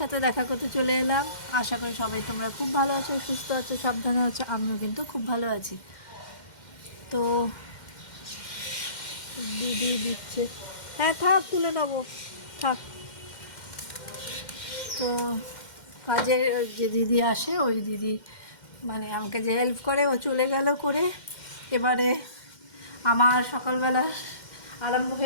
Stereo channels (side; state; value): right; late; 2.1 ms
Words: দেখা করতে চলে এলাম। আশা করি সবাই তোমরা খুব ভালো আছো, সুস্থ আছো, সাবধানে আছো। আমিও কিন্তু খুব ভালো আছি। তো দিদি দিচ্ছে, হ্যাঁ থাক, তুলে নেবো, থাক। তো কাজের যে দিদি আসে, ওই দিদি মানে আমাকে যে হেল্প করে, ও চলে গেল করে। এবারে আমার সকালবেলা আরম্ভ